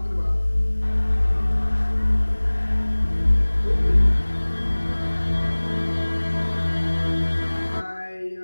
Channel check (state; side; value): inverted; both; correlation -1.00